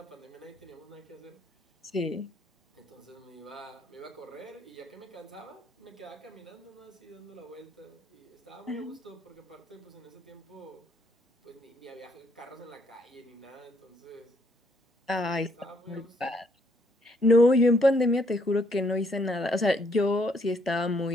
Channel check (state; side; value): normal; both; correlation 0.69